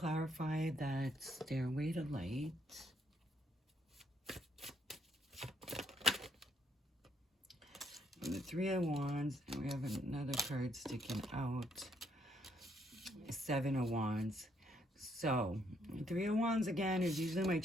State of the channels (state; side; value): normal; both; correlation 0.71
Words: that Stairway to Light. And the Three of Wands, and we have another card sticking out. Seven of Wands. So, Three of Wands again is usually my